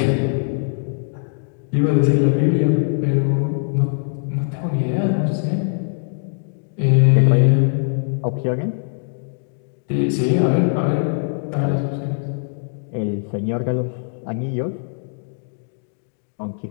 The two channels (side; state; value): right; silent; digital silence